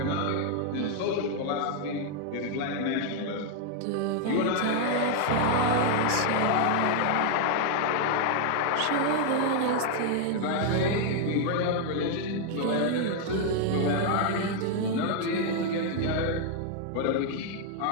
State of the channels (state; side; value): different; both; correlation 0.00